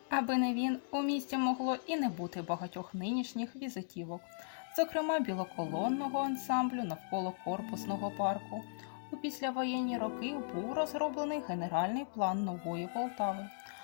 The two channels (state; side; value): silent; right; digital silence